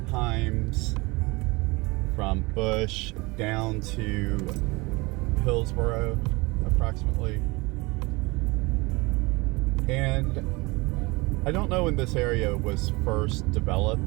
Himes, from Bush down to Hillsborough approximately. And I don't know when this area was first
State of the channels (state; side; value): quieter; left; 24.4 dB